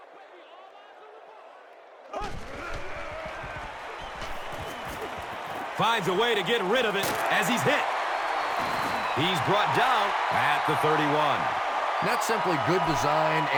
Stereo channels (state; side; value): identical; both; correlation 1.00